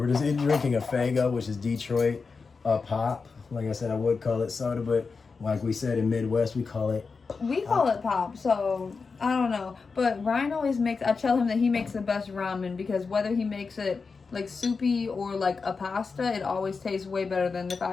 just drinking a Fago, which is Detroit pop. Like I said, I would call it soda, but like we said in Midwest, we call it. We call it pop, so I don't know. But Ryan always makes. I tell him that he makes the best ramen because whether he makes it like soupy or like a pasta, it always tastes way better than if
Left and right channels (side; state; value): right; quieter; 4.8 dB